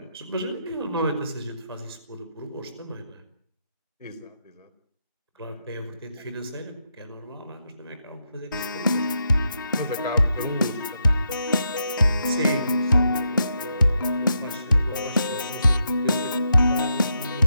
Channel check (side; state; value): both; inverted; correlation -0.82